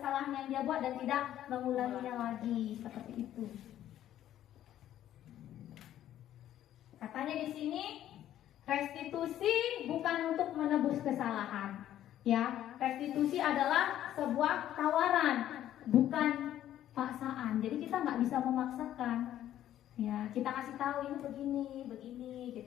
yang dia buat dan tidak mengulanginya lagi, seperti itu. Katanya di sini restitusi bukan untuk menebus kesalahan, ya. Restitusi adalah sebuah tawaran, bukan paksaan. Jadi kita nggak bisa memaksakan. Ya, kita kasih tahu ini begini,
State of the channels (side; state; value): right; quieter; 12.0 dB